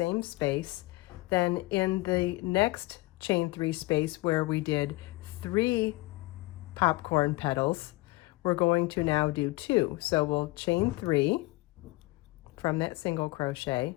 space. Then in the next chain 3 space where we did 3 popcorn petals, we're going to now do 2. So we'll chain 3 from that single crochet,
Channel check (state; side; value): quieter; right; 21.2 dB